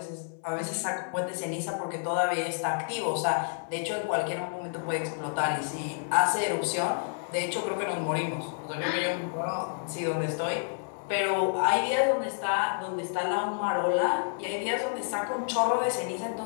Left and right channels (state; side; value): silent; right; 58 dB below the other